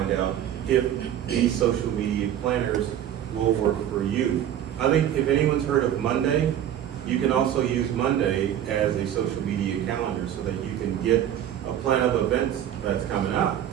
out if these social media planners will work for you. I think if anyone's heard of Monday, you can also use Monday as a social media calendar so that you can get a plan of events that's coming up.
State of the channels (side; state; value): left; quieter; 10.7 dB